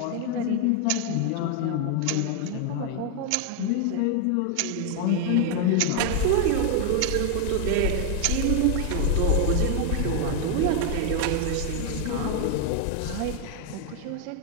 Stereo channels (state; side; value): different; both; correlation 0.00